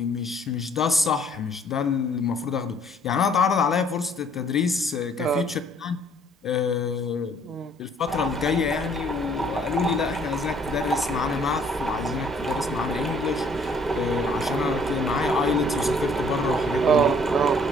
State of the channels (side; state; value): both; normal; correlation 0.60